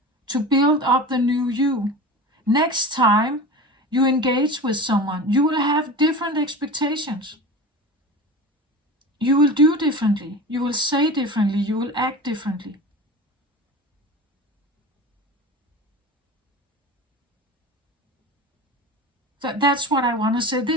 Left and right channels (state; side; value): normal; both; correlation 0.32